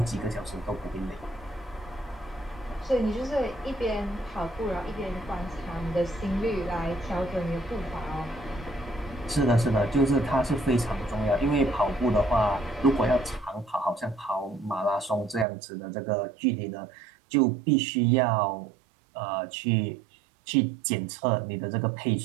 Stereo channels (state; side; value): drops out; left; at 15.5 s